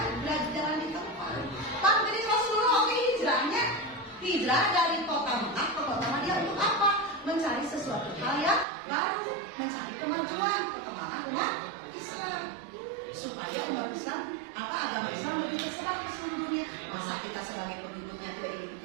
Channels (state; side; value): drops out; left; at 8.7 s